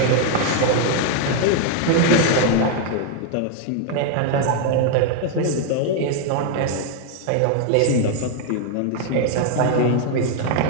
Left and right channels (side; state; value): both; different; correlation 0.01